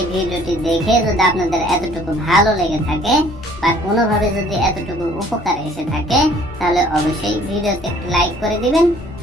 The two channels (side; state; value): both; normal; correlation 0.56